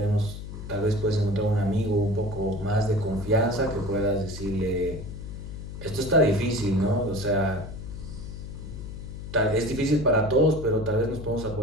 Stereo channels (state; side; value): noise; left; hum, 9 dB below the sound